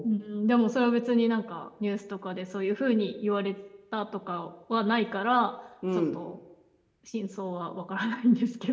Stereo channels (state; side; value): identical; both; correlation 1.00